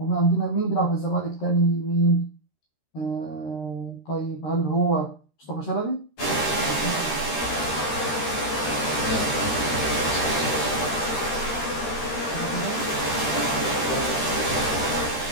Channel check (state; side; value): late; right; 13 ms